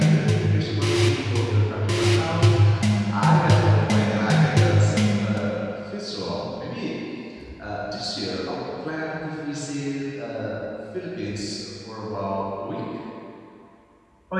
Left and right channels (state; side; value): identical; both; correlation 1.00